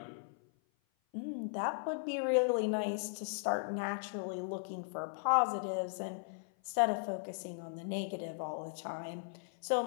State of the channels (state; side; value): silent; right; 53 dB below the other